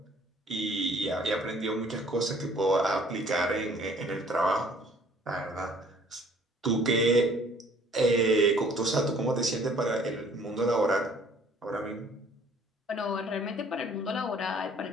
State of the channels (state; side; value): normal; both; correlation 0.57